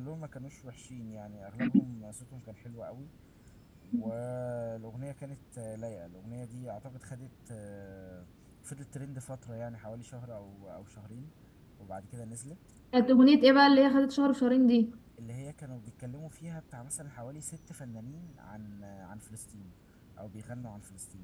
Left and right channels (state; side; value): identical; both; correlation 1.00